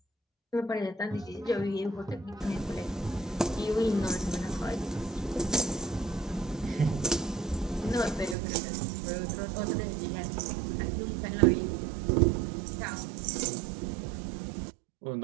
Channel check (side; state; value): left; drops out; at 8.3 s